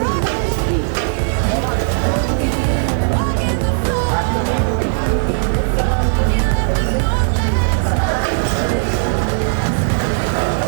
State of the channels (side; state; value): left; silent; 61 dB below the other